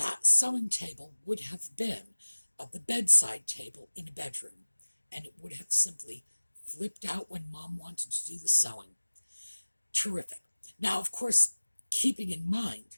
sewing table would have been the bedside table in a bedroom, and it would have simply flipped out when mom wanted to do the sewing. Terrific. Now, of course, keeping in mind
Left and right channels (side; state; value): both; inverted; correlation -1.00